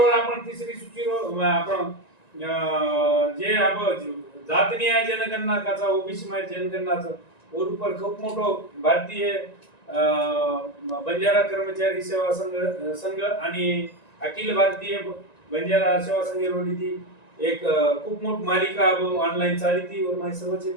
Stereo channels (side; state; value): right; late; 1.9 ms